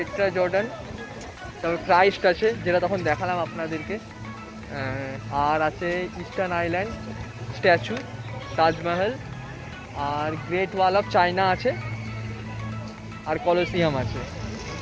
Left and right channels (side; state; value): both; identical; correlation 1.00